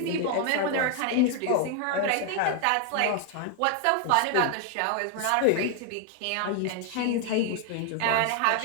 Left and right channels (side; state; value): both; different; correlation 0.00